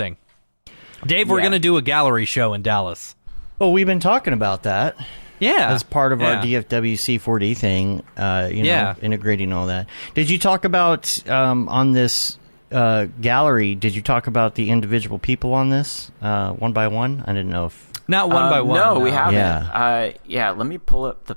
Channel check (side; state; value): both; inverted; correlation -1.00